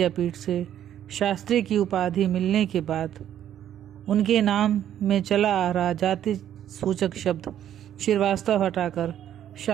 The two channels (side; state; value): left; quieter; 10.7 dB